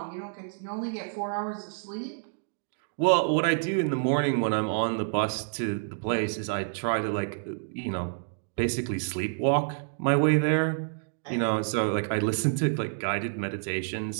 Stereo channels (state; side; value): silent; left; digital silence